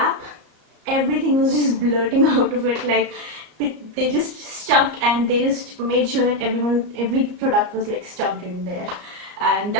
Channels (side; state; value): left; late; 34 ms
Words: everything was just blurting out of it. Like they just stuffed, and they just made sure that every product was like stuffed in there. And